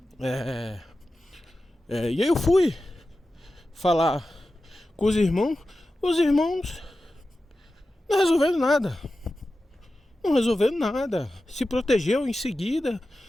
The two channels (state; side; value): normal; both; correlation 0.93